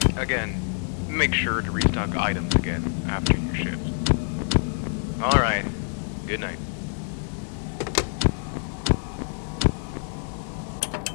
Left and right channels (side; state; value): right; silent; digital silence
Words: again, make sure to restock items again after your shift. Alright, good night.